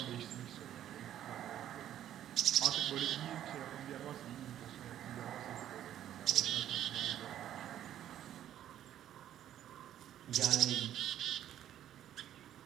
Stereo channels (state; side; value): quieter; left; 11.3 dB